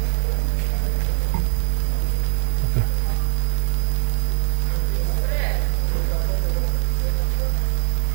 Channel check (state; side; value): silent; left; digital silence